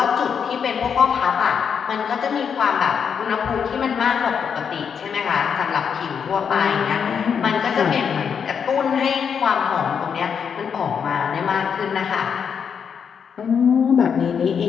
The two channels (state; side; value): quieter; right; 7.0 dB